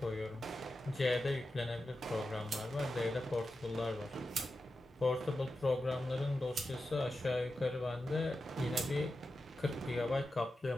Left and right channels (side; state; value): both; normal; correlation 0.91